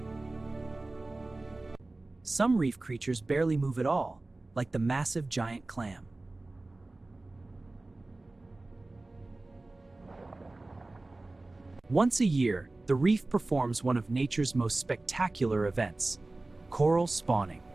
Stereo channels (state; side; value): quieter; left; 3.0 dB